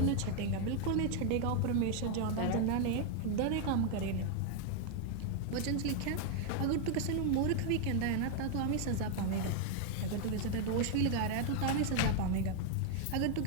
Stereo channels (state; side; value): different; both; correlation 0.00